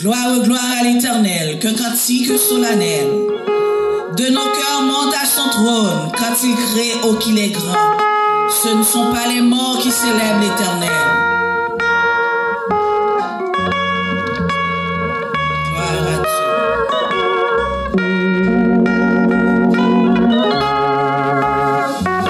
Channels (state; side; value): identical; both; correlation 1.00